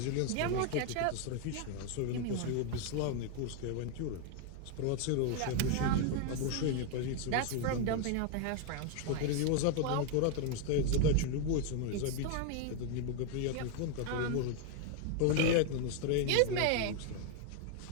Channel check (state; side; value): different; both; correlation 0.01